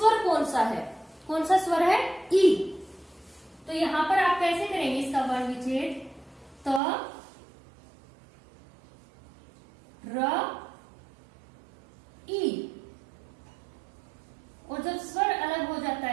कौन सा है? कौन सा स्वर है? ई। तो यहां पर आप कैसे करेंगे इसका वर्ण विच्छेद? त, र, ई। और जब स्वर अलग हो जाता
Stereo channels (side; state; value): left; drops out; at 6.8 s